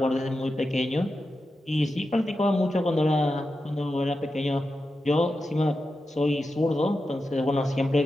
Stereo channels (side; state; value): both; normal; correlation 0.90